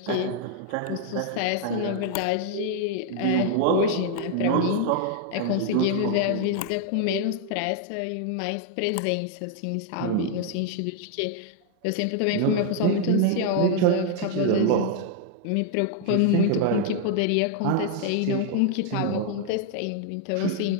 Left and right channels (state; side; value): different; both; correlation 0.00